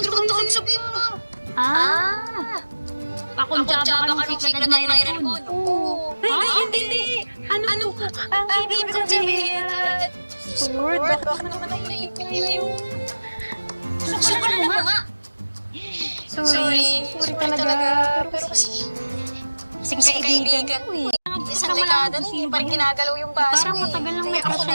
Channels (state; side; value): inverted; both; correlation -1.00